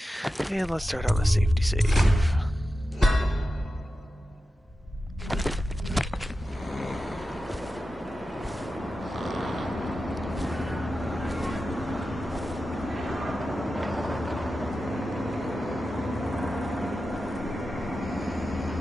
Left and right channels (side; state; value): both; normal; correlation 0.92